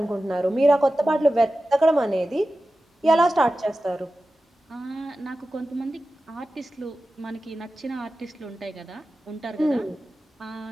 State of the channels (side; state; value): both; normal; correlation 0.94